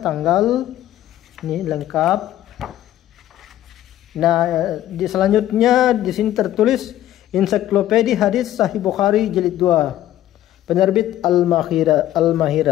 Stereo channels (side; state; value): right; quieter; 13.2 dB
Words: tanggal, ini lengkap. Nah, selanjutnya di sini tertulis Ensiklopedia Hadis Sahih Bukhari jilid 2, penerbit